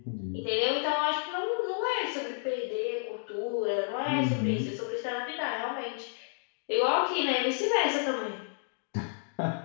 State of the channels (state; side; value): silent; right; digital silence